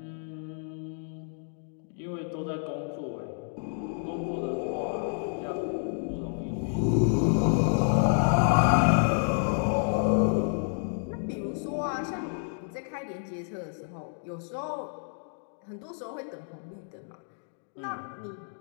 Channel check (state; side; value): silent; right; digital silence